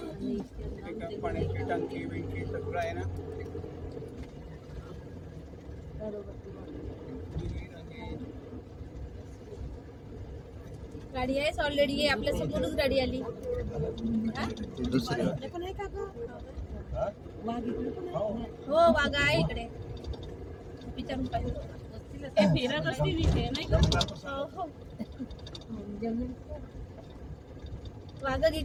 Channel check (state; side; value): identical; both; correlation 1.00